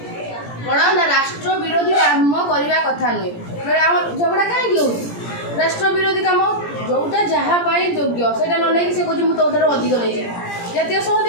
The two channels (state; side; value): late; right; 17 ms